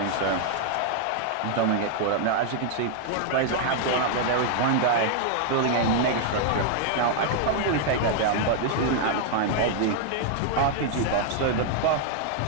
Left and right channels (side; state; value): both; different; correlation 0.00